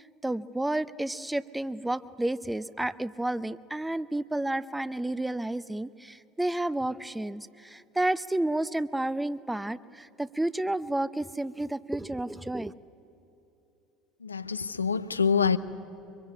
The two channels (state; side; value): normal; both; correlation 0.53